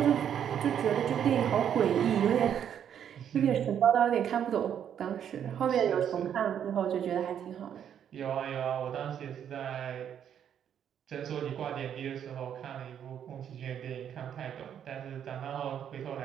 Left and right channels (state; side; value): quieter; left; 9.1 dB